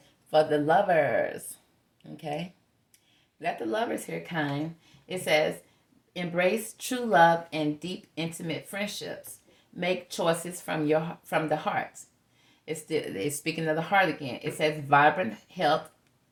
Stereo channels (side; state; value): both; identical; correlation 1.00